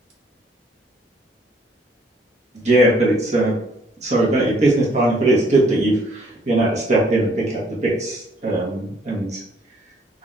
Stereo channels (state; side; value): normal; both; correlation 0.63